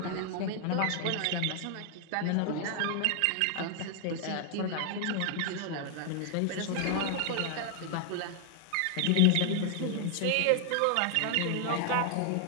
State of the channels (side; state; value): both; different; correlation 0.00